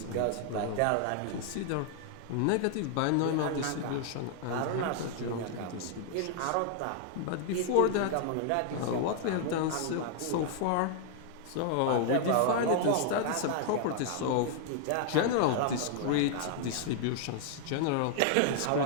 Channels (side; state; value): both; different; correlation 0.00